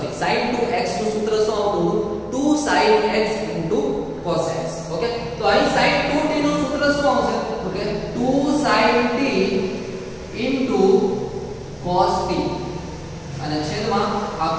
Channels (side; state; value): both; identical; correlation 1.00